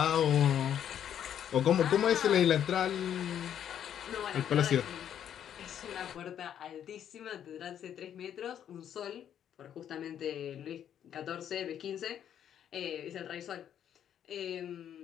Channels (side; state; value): right; quieter; 9.7 dB